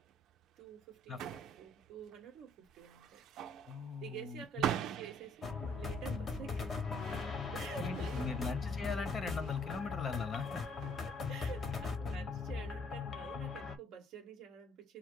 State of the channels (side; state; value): both; normal; correlation 0.63